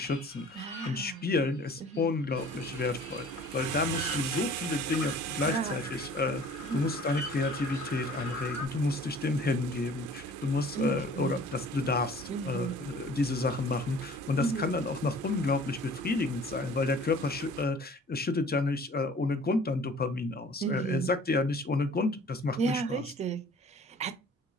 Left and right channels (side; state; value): both; normal; correlation 0.49